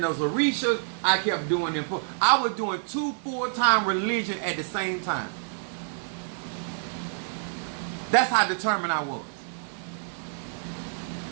those Orishas. I kept doing them. I was doing 2 full-time religion at the same time. That's how determined I was.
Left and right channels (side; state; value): left; silent; digital silence